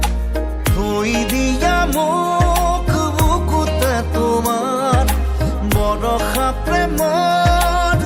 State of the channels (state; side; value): identical; both; correlation 1.00